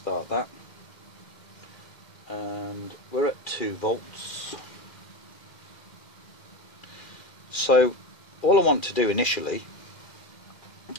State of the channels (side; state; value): right; late; 2.4 ms